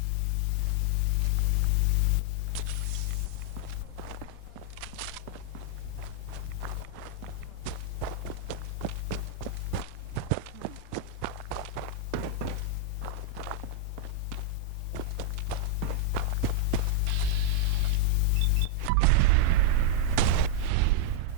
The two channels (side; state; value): both; different; correlation -0.01